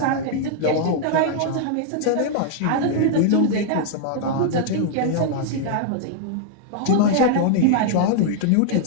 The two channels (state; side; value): different; both; correlation -0.01